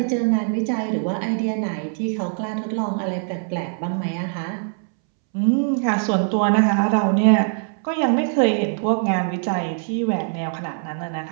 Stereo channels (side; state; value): left; silent; 64 dB below the other